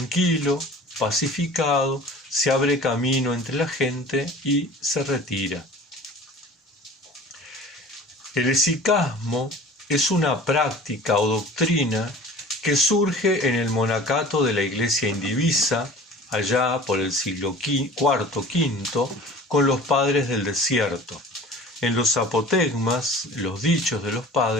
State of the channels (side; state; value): both; normal; correlation 0.43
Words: pacificado, se abre camino entre la gente y se retira. El esicasmo es una práctica o doctrina que surge en el monacato de la Iglesia indivisa, allá por el siglo IV-V, con los padres del desierto. En los apotegmas, los dichos de los